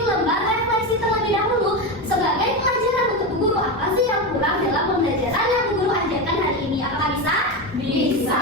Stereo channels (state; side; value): normal; both; correlation 0.17